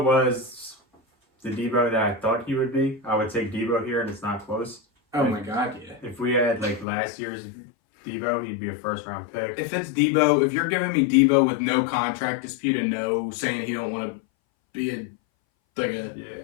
was the Debo that I thought he would be, I would take Debo here, and it's not close. Oh my God, yeah. If we had like last year's Debo, he'd be a first-round pick. If it's Debo, if you're giving me Debo with no contract dispute and no saying he don't want to be a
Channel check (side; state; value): right; drops out; at 6.9 s